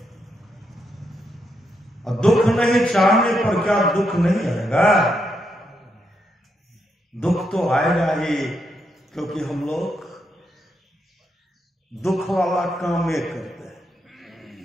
और दुख नहीं चाहने पर क्या दुख नहीं आएगा? दुख तो आएगा ही, क्योंकि हम लोग दुख वाला काम ये करते हैं।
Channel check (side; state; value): both; normal; correlation 0.81